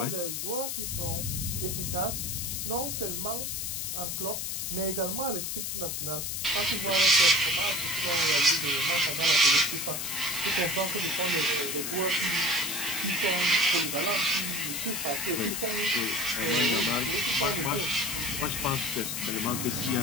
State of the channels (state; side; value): noise; left; hiss, 3 dB below the sound